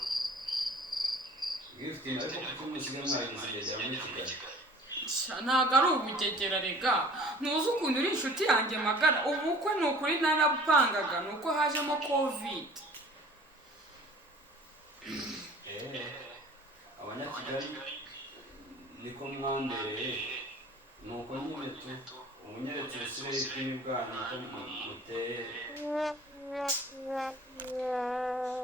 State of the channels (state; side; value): normal; both; correlation 0.48